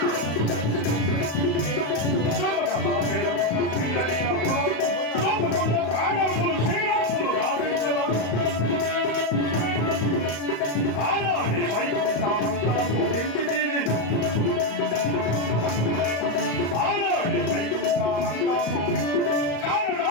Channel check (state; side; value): late; right; 35 ms